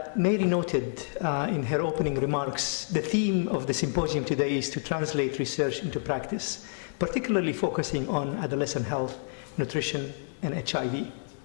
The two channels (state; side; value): silent; right; 57 dB below the other